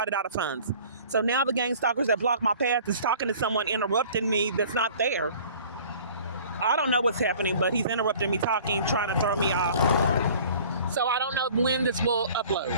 out of funds. So now the gang stalkers that block my path is talking to someone, interrupting me that's not there. I don't know what's happening, but he's interrupting me talking, trying to throw me off. So I don't know when this will upload.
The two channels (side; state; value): both; inverted; correlation -0.48